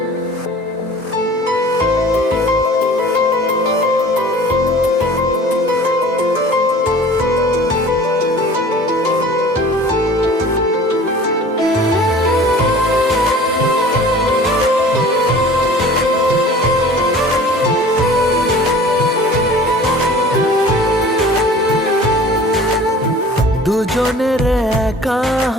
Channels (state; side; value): normal; both; correlation 0.45